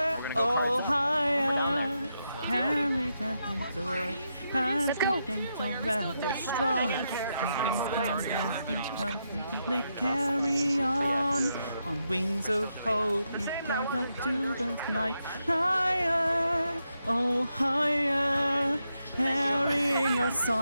oh higher. Carry that joy, let's go. Rather strong. They carry on wings of hope. Down to the night, higher, oh higher. Carrying a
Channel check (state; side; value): inverted; both; correlation -0.84